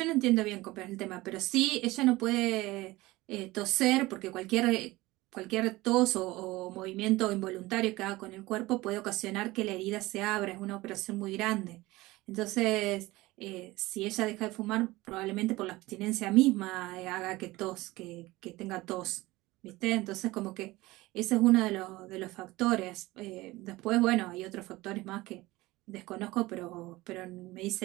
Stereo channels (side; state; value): left; quieter; 19.7 dB